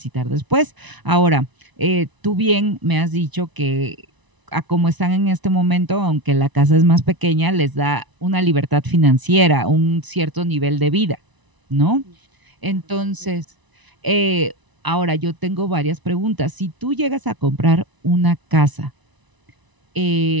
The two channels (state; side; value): late; left; 1.0 ms